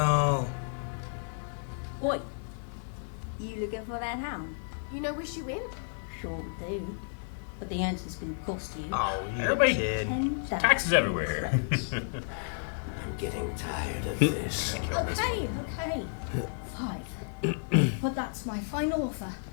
Oi, you looking for that hound? You know where she went? Sure do. But the answer's gonna cost you. Oh, you Everybody- kid. 10,000 Taxes everywhere. I'm getting tired of this. Okay. 5. But that's my final offer.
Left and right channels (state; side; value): silent; right; digital silence